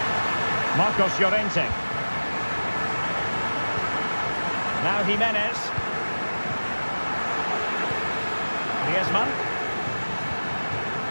Marcos Llorente. Now Jimenez. Griezmann.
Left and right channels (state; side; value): inverted; both; correlation -1.00